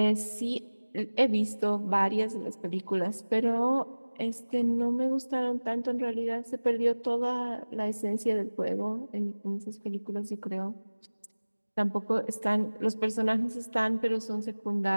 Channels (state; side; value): inverted; both; correlation -1.00